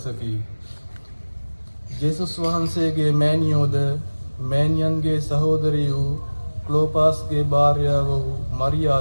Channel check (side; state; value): both; inverted; correlation -1.00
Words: ජේසුස් වහන්සේගේ මෑණියෝද මෑණියන්ගේ සහෝදරිය වූ ක්ලෝපාස්ගේ භාර්යාව වූ